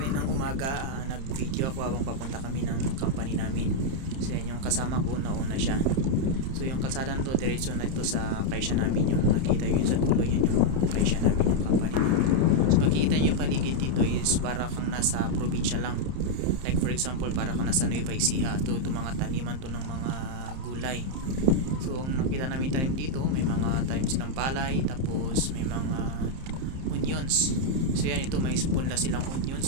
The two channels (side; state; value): left; late; 30 ms